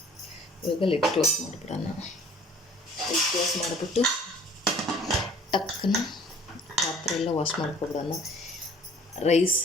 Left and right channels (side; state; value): both; normal; correlation 0.53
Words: ಇವಾಗ ಲಿಡ್ ಕ್ಲೋಸ್ ಮಾಡಿಬಿಡೋಣ. ಲಿಡ್ ಕ್ಲೋಸ್ ಮಾಡಿಬಿಟ್ಟು ಅದಕ್ಕನ್ನು ಪಾತ್ರೆ ಎಲ್ಲ ವಾಶ್ ಮಾಡ್ಕೊಬಿಡೋಣ.